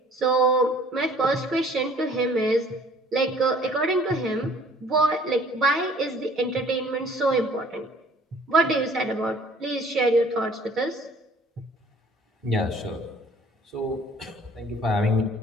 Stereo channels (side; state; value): both; normal; correlation 0.53